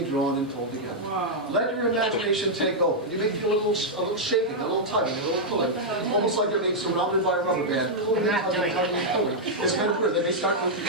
drawn and pulled together. Wow. Let your imagination take over. You may feel a little shaking, a little tugging, a little pulling. Almost like they're being surrounded by a rubber band. Pulling and tugging, tugging and pulling. It's kind of weird. They may start to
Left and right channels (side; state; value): both; normal; correlation -0.05